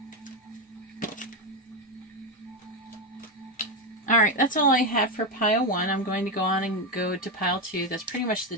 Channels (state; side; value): normal; both; correlation 0.10